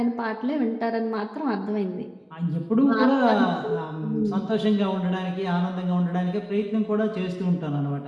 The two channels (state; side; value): identical; both; correlation 1.00